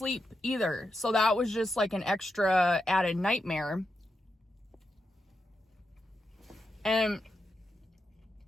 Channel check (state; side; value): normal; both; correlation 0.86